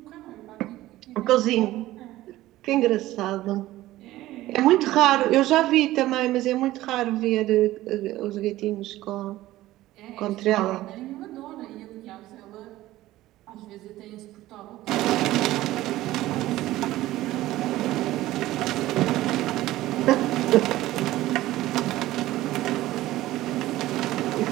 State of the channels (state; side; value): quieter; left; 16.0 dB